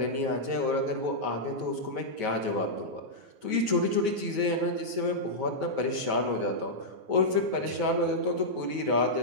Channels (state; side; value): late; left; 9.3 ms